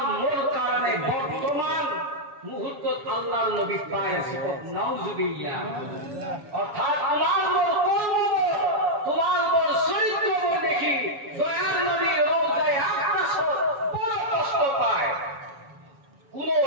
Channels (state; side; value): late; left; 7.2 ms